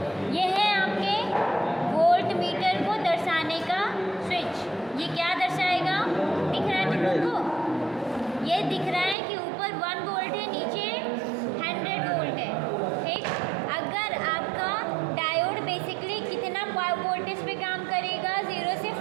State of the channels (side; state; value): left; drops out; at 9.2 s